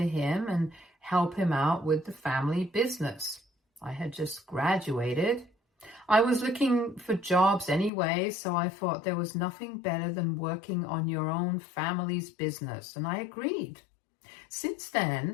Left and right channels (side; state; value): right; drops out; at 7.9 s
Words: and help him out with the family business. I had just graduated. I was looking for jobs anyway, so I thought there was nothing better than working on your own family's business, and I agreed. Since